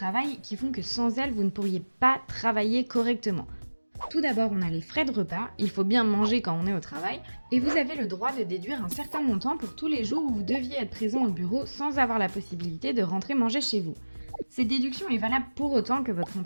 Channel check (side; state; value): both; inverted; correlation -1.00